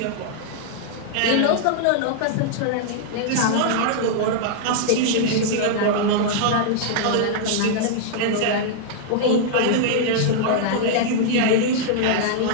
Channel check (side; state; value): both; different; correlation -0.01